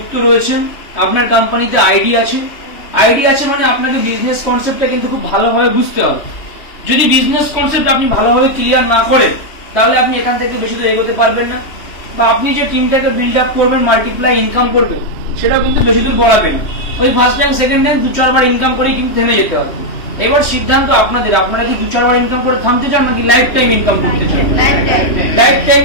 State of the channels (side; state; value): right; late; 3.1 ms